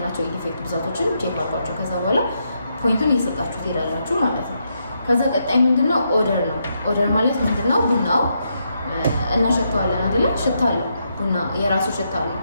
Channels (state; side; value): inverted; both; correlation -0.80